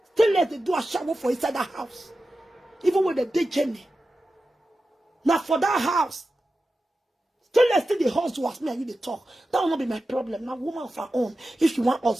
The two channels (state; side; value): normal; both; correlation 0.92